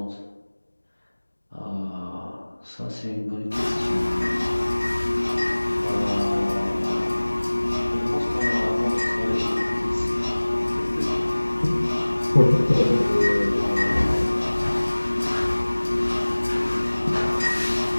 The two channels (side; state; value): both; inverted; correlation -1.00